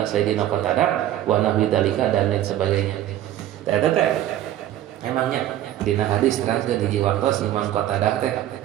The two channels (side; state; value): left; quieter; 12.7 dB